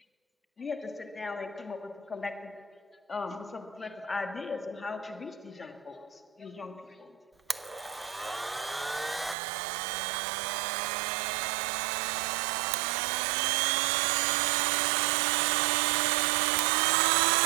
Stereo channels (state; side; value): drops out; left; at 9.3 s